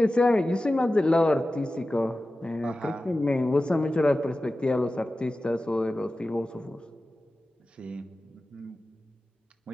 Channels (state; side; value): normal; both; correlation 0.95